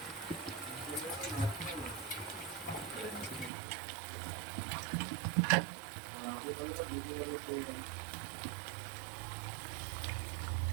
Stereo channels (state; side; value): drops out; left; at 3.5 s